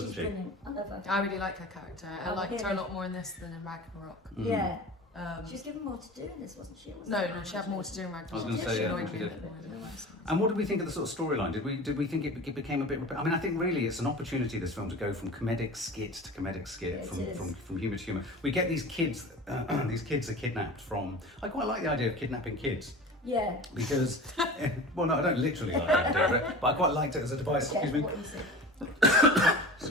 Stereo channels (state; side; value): normal; both; correlation 0.35